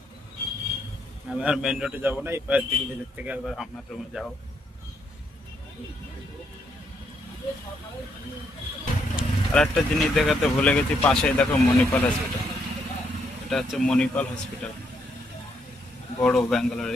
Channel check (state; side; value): normal; both; correlation 0.75